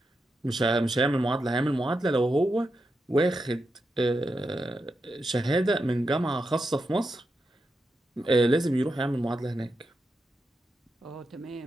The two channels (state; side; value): normal; both; correlation 0.87